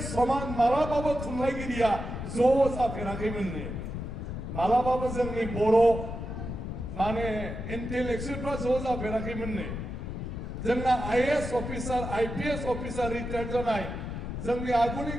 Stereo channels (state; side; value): noise; left; rumble, 6 dB below the sound